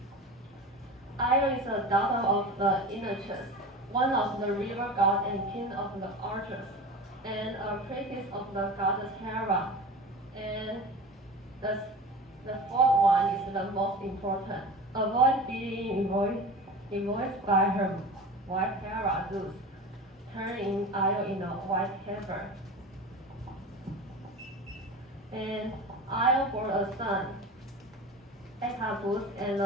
Io is a daughter of the Enochus, one of the river god and king of the archers, and a priestess of the goddess Hera. And the fourth one is the most important. Avoid being invoiced by her wife Hera, Zeus, turning Io into a white heifer. And Io bore a son, Echabus, and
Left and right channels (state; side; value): normal; both; correlation 0.33